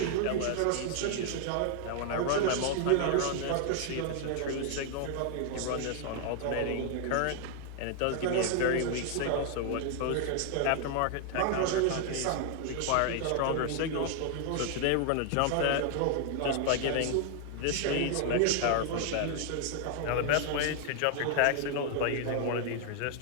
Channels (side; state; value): both; different; correlation 0.00